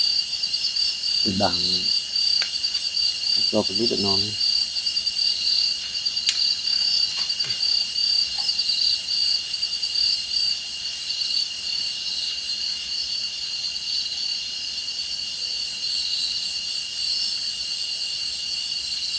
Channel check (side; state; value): both; identical; correlation 1.00